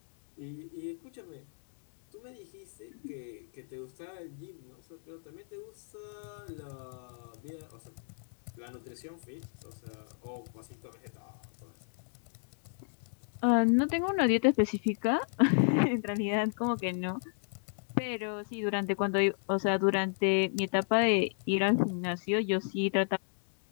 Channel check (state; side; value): silent; right; digital silence